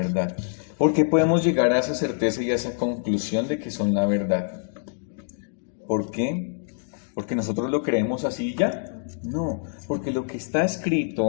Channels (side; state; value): right; silent; digital silence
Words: ¿Por qué podemos llegar a esa certeza y a esa conclusión de que son la verdad? ¿Por qué? ¿Porque nosotros lo creemos así ya? No, porque lo que está